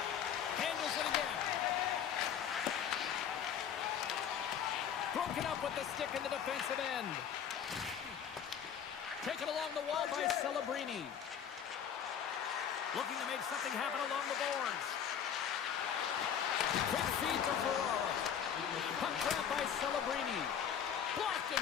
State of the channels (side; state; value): right; quieter; 8.4 dB